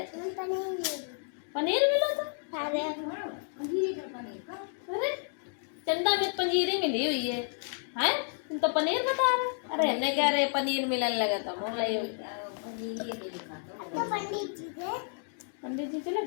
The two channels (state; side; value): silent; right; 57 dB below the other